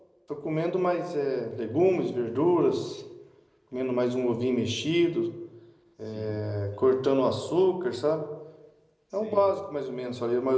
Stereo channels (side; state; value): both; identical; correlation 1.00